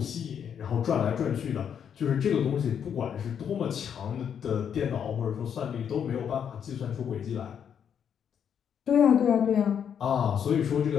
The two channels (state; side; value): quieter; right; 8.1 dB